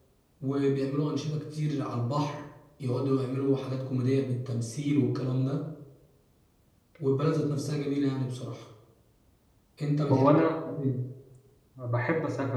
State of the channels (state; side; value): identical; both; correlation 1.00